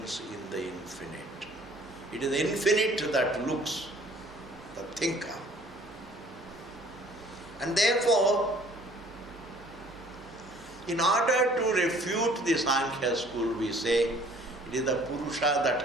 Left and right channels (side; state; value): both; normal; correlation 0.55